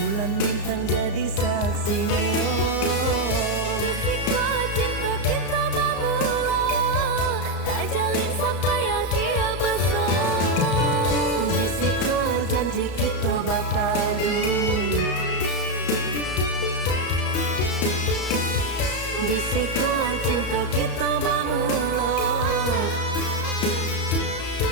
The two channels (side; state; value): right; late; 34 ms